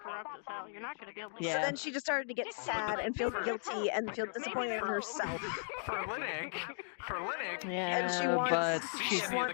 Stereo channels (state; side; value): silent; right; digital silence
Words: as hell. You're not going to be able to. So then she just started to get sad and feel guilty and feel disappointed in herself. For Linux. Yeah, and she